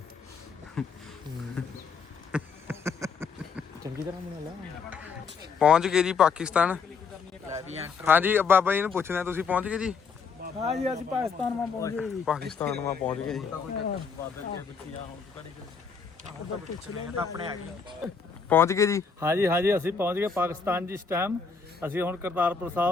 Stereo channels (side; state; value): right; quieter; 5.5 dB